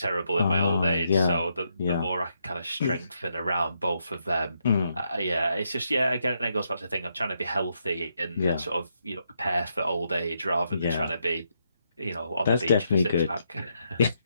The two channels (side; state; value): both; inverted; correlation -0.79